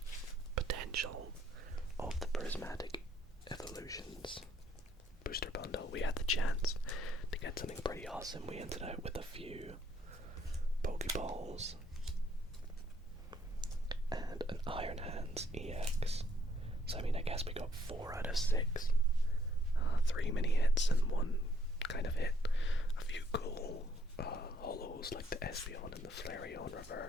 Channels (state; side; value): normal; both; correlation 0.67